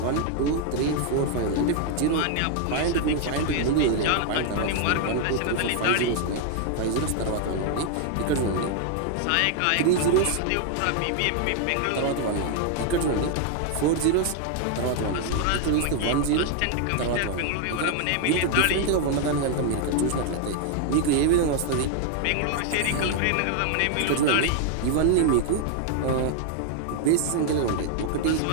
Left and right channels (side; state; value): both; different; correlation 0.00